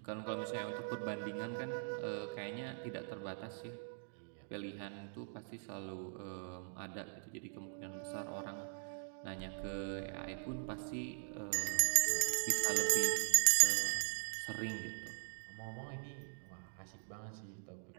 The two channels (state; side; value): silent; left; digital silence